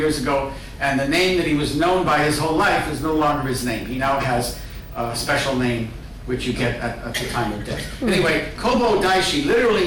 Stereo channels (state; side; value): identical; both; correlation 1.00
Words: ago, and the name that he was known by his whole life is no longer his name. He now has a special name which you get at the time of death. Anyway, Kobo Daishi